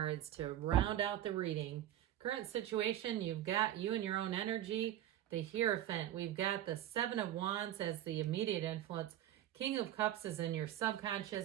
to round out the reading. Current situation, you've got you and your own energy, the Hierophant. We've got the Seven of Wands as the immediate influence. King of Cups is in your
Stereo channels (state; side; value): quieter; left; 12.3 dB